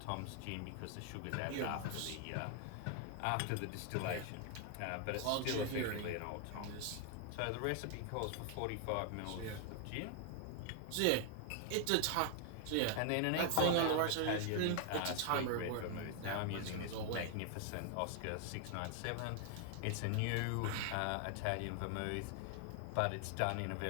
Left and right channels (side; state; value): both; different; correlation 0.00